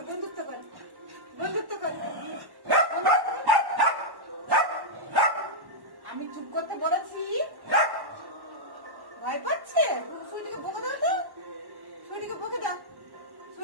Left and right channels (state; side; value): late; left; 1.1 ms